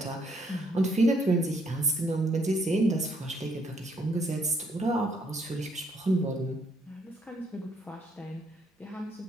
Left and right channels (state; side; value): normal; both; correlation 0.70